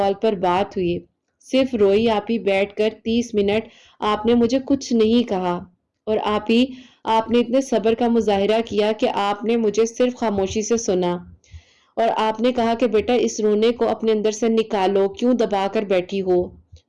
پر بات ہوئی، صرف روئی آپ ہی بیٹھ کر 30 منٹ. آپ نے مجھے کچھ نہیں کہا اور آپ نے اتنے صبر کا مظاہرہ کیا کہ آپ نے مجھے صرف خاموشی سے سنا اور آپ نے کہا کہ بیٹا اس رونے کو اپنے اندر سے نکالو، کیوں دبا کر بیٹھی ہو،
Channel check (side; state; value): both; identical; correlation 1.00